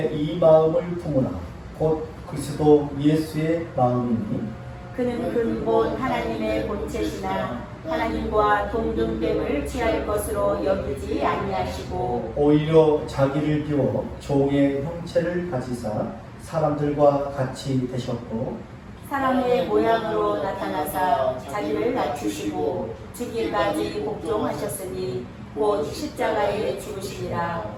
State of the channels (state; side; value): identical; both; correlation 1.00